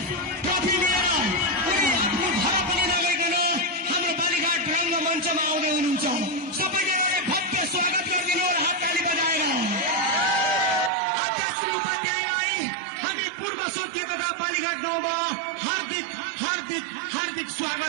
उनी आफ्नो भाडा पनि नगइकन हाम्रो बालीघाट रङ्गमञ्चमा आउँदै हुनुहुन्छ। सबैजनाले भव्य स्वागत गरिदिनु र हातताली बजाएर अध्यक्ष श्री उपाध्यायलाई हामी पूर्व सोधिएका बालीघाट गाउँमा हार्दिक हार्दिक हार्दिक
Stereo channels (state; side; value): drops out; left; at 10.9 s